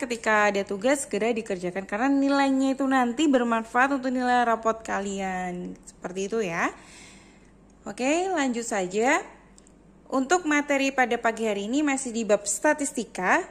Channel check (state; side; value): identical; both; correlation 1.00